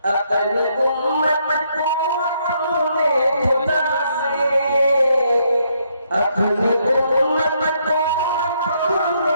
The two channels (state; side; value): inverted; both; correlation -0.73